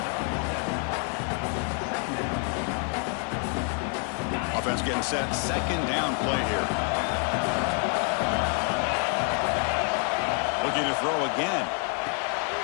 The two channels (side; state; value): right; quieter; 37.7 dB